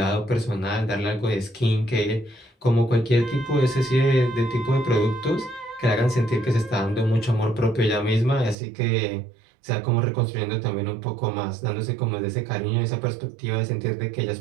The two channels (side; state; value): left; drops out; at 8.6 s